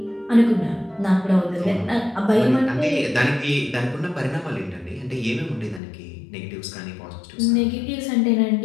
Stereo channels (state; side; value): drops out; right; at 5.8 s